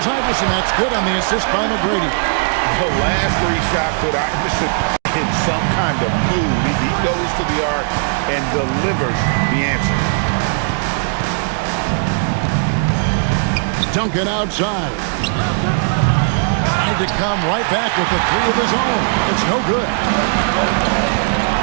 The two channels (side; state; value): left; silent; digital silence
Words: Iverson. That's good on the assist by McGrady. The last 3 shots put Iverson in some kind of mood. He goes to the arc and delivers the answer. Duncan outside. Tried to come right back with the 3 of his own. It's no good.